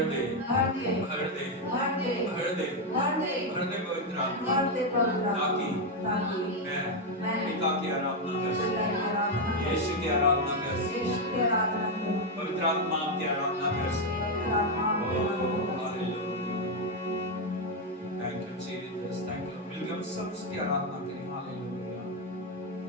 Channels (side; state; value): both; normal; correlation 0.04